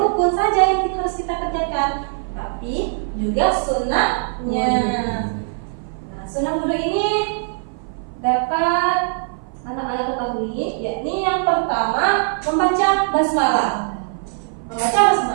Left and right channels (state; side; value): silent; left; 56 dB below the other